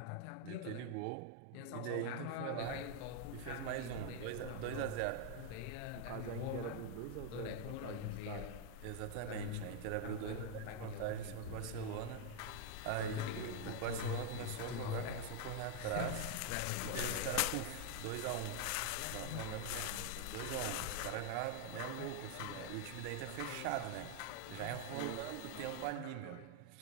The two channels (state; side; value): different; both; correlation 0.00